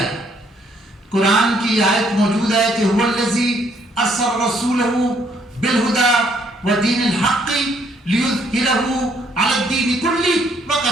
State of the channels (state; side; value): normal; both; correlation 0.68